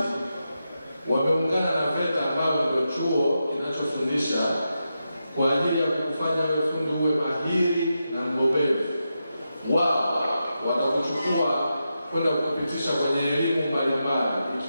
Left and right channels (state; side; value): inverted; both; correlation -0.88